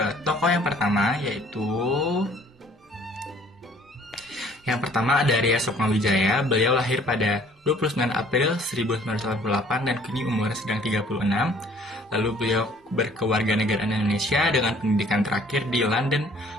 tokoh yang pertama, yaitu yang pertama ada Ria Sukmawijaya. Beliau lahir pada 29 April 1988 dan kini umurnya sedang 36. Lalu beliau berkewarganegaraan Indonesia dengan pendidikan terakhir di London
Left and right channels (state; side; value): normal; both; correlation 0.56